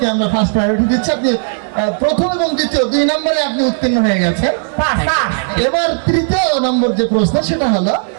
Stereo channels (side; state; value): left; silent; digital silence